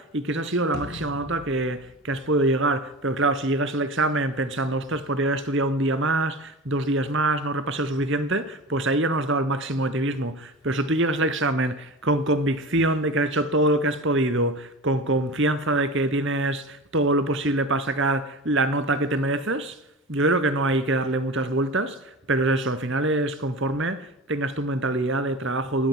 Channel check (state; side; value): normal; both; correlation 0.31